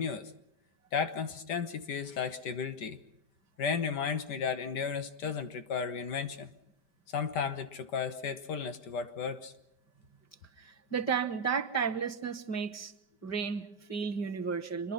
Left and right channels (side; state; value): right; late; 5.1 ms